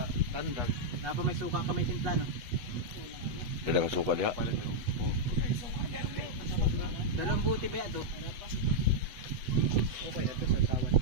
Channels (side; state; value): left; late; 8.2 ms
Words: tandag. Napa may suka ka may timpla no? Dala ka suka diha. Dalawang buti ba ito? Okay, ito sa sawat